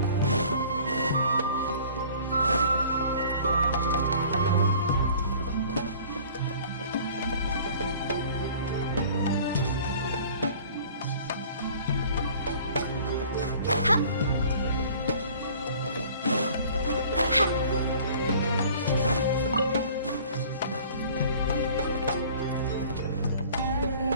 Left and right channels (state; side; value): inverted; both; correlation -0.49